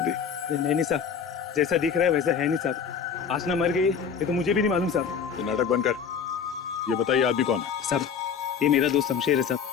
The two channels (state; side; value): quieter; right; 6.9 dB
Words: नहीं साहब, जैसा दिख रहा है वैसा है नहीं साहब। आसना मर गई ये तो मुझे भी नहीं मालूम साहब। ये नाटक बंद कर, ये बताइए आदमी कौन है? साहब ये मेरा दोस्त शमशेर है साहब।